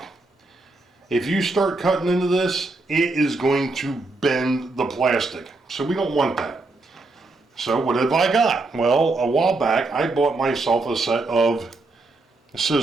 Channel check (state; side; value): quieter; left; 3.2 dB